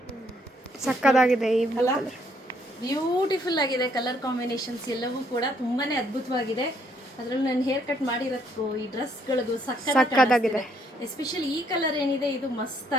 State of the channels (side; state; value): both; normal; correlation 0.69